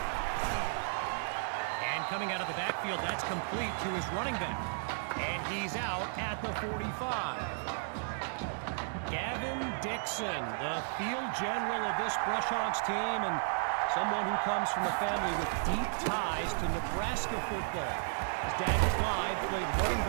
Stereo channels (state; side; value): silent; left; digital silence